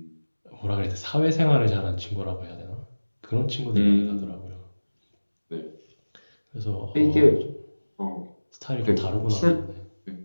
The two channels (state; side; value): inverted; both; correlation -1.00